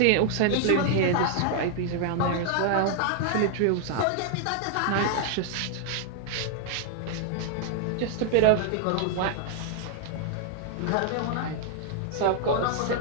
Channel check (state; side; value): different; both; correlation 0.00